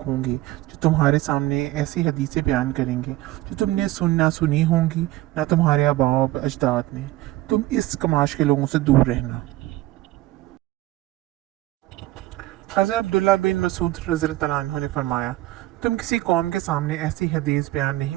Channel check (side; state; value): left; quieter; 16.8 dB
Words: होंगे जो तुम्हारे सामने ऐसी हदीसें बयान करेंगे जो तुमने ना सुनी होंगी ना तुम्हारे आबाओ अजदाद ने। तुम इस कमाश के लोगों से दूर रहना। हज़रत अब्दुल्ला बिन मसूद रज़ियल्लाहु अन्हु ने फरमाया, तुम किसी कौम के सामने ऐसी हदीस बयान